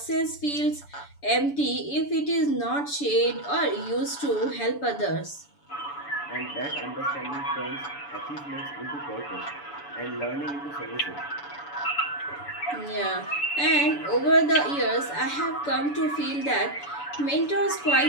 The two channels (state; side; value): late; right; 7.0 ms